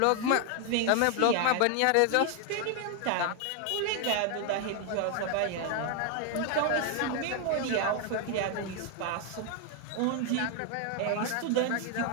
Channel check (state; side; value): different; both; correlation 0.01